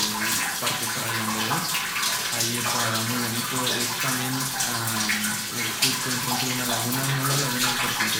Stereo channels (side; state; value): both; identical; correlation 1.00